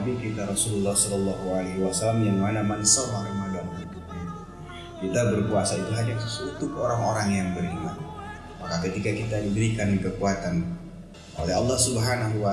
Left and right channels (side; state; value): both; identical; correlation 1.00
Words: kita Rasulullah Sallallahu Alaihi Wasallam, yang mana man shoma Ramadan, kita berpuasa itu hanya untuk orang-orang yang beriman. Maka ketika kita diberikan kekuatan oleh Allah Subhanahu